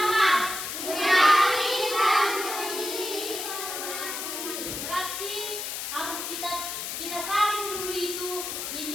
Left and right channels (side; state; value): left; noise; hiss, 5 dB below the sound